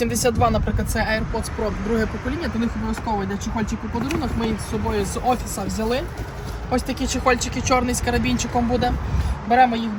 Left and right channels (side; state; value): both; identical; correlation 1.00